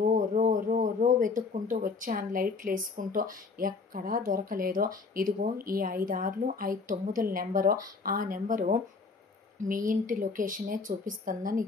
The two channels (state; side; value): quieter; right; 4.4 dB